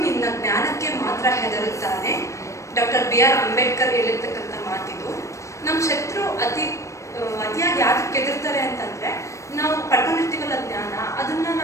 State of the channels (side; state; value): right; late; 0.15 ms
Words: ನಿನ್ನ ಜ್ಞಾನಕ್ಕೆ ಮಾತ್ರ ಹೆದರುತ್ತಾನೆ. ಡಾಕ್ಟರ್ BR ಅಂಬೇಡ್ಕರ್ ಹೇಳಿರ್ತಕ್ಕಂಥ ಮಾತಿದು. ನಮ್ಮ ಶತ್ರು ಅತಿಯಾಗಿ ಯಾಕೆ ಹೆದರ್ತಾರೆ ಅಂತಂದ್ರೆ, ನಾವು ಪಡ್ಕೊಂಡಿರ್ತೀವಲ್ಲ ಜ್ಞಾನ, ಅದನ್ನ